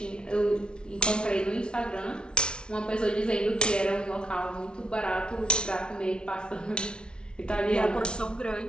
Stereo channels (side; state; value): right; late; 0.056 ms